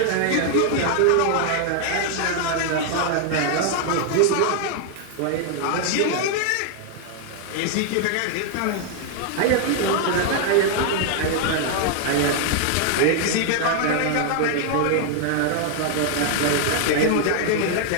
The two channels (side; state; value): both; different; correlation 0.00